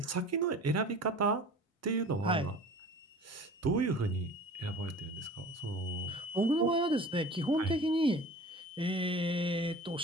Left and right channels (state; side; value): normal; both; correlation 0.42